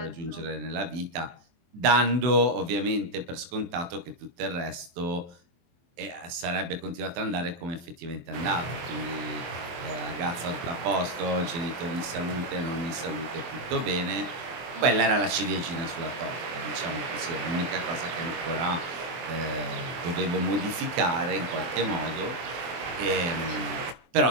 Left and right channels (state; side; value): late; left; 23 ms